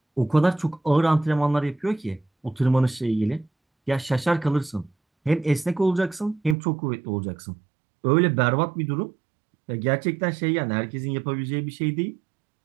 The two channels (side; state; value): left; drops out; at 6.6 s